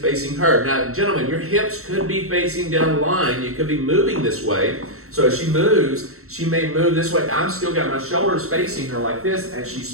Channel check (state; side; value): late; left; 0.63 ms